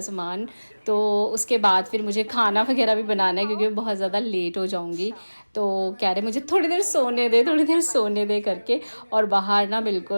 सामान, तो उसके बाद फिर मुझे खाना वगैरह भी बनाना है क्योंकि मैं बहुत ज़्यादा लेट हो जाऊँगी। तो कह रहे मुझे थोड़ी देर सोने दे, थोड़ी देर सोने दे करके। और बाहर ना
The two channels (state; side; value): inverted; both; correlation -1.00